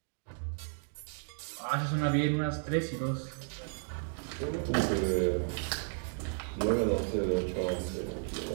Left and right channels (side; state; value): left; silent; 55 dB below the other